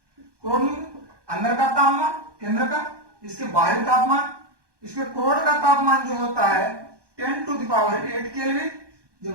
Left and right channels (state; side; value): late; left; 1.2 ms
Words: क्रोड अंदर का तापमान केंद्र का, इसके बाहरी तापमान, इसके क्रोड का तापमान जो होता है 10⁸ केल्विन,